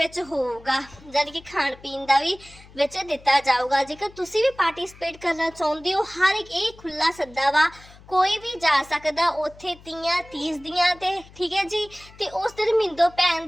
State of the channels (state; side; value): noise; left; hum, 22 dB below the sound